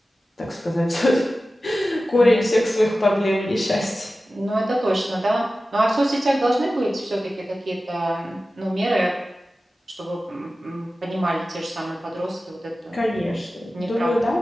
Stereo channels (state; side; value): normal; both; correlation 0.95